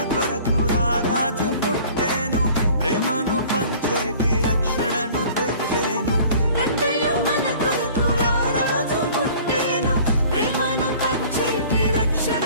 కొరకు రారాజు పుట్టేను ప్రేమను పంచేటి రక్షణను తెచ్చేను రండయ్యో మన కొరకు రారాజు పుట్టేను ప్రేమను పంచేటి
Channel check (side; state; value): both; inverted; correlation -0.49